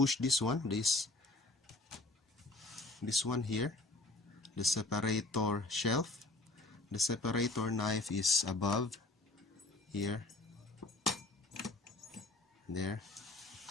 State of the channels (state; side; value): quieter; right; 3.0 dB